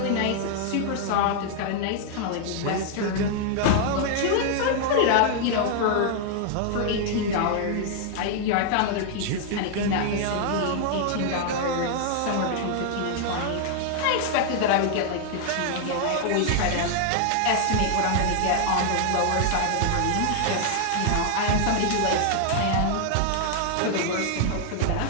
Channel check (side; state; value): both; different; correlation 0.00